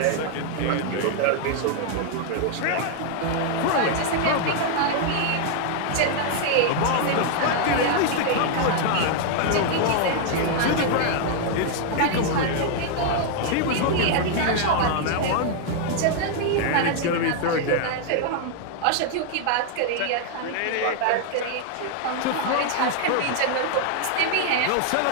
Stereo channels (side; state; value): both; different; correlation 0.00